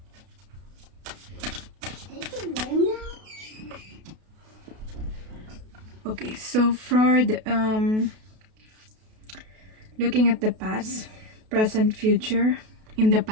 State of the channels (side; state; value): left; late; 32 ms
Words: Okay, so for the looking at the past, present, future. In the